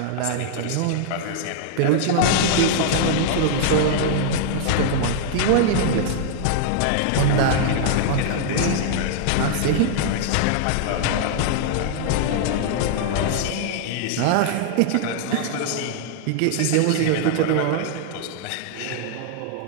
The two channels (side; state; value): both; different; correlation -0.01